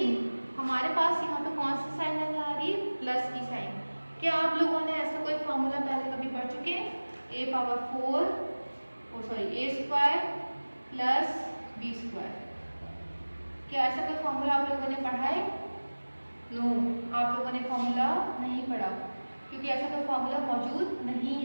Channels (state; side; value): inverted; both; correlation -1.00